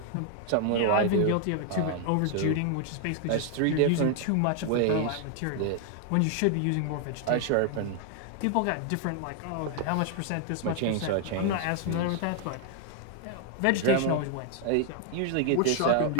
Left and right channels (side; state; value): both; different; correlation 0.00